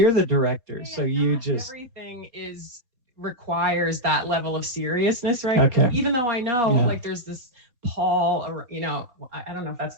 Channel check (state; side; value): late; left; 4.2 ms